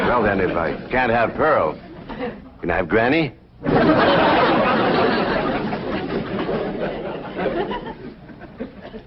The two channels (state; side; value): identical; both; correlation 1.00